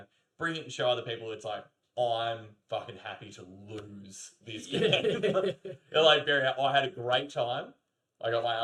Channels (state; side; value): identical; both; correlation 1.00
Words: bring it and show other people. It's like, I'm fucking happy to lose this game. They're like, Barry, I had a great time. I got my